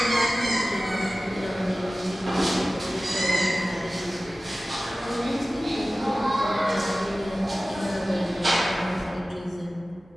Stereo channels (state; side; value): normal; both; correlation 0.96